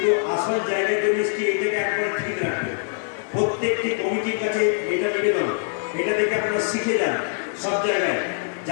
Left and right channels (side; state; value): right; silent; digital silence